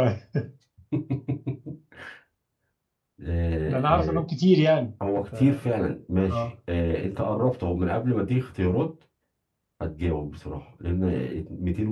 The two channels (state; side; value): identical; both; correlation 1.00